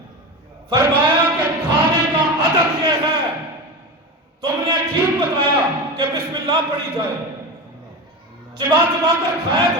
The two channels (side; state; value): both; normal; correlation 0.24